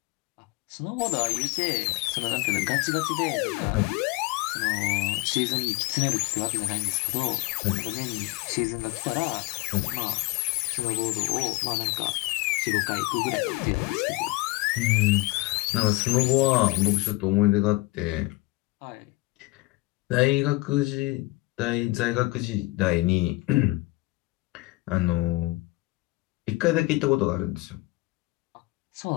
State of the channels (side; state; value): right; quieter; 22.1 dB